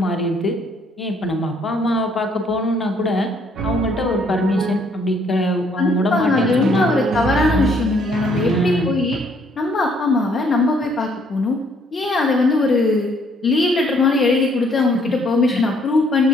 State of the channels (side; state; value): both; normal; correlation 0.66